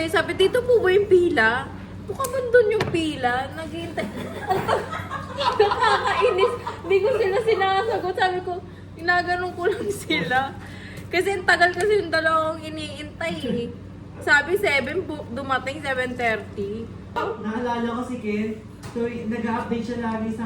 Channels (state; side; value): identical; both; correlation 1.00